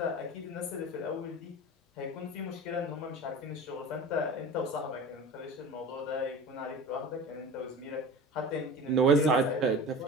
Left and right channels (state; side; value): normal; both; correlation 0.35